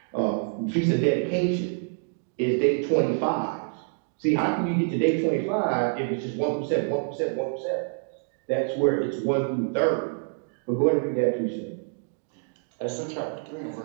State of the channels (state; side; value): silent; left; digital silence